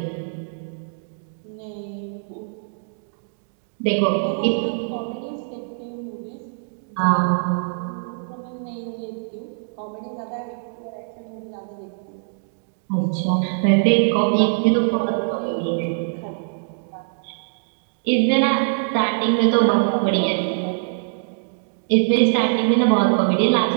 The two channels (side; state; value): left; silent; digital silence